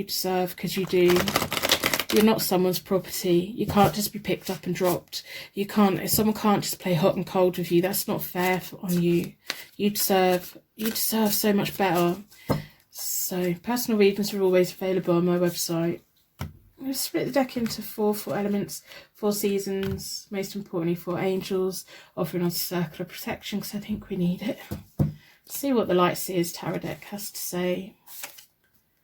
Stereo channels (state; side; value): identical; both; correlation 1.00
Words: deserve, because you do. You're not someone's property. You can't just be picked up and dropped. Someone can't just play hot and cold with you. That's not fair on you. You deserve so much better. So personal readings are always available on my website. I'm going to split the deck into four elements, 4 seasons, most importantly 4 angels, offering us a circle of protection, because I think we need it. Let's see what the Light Seers Tarot deck has to say.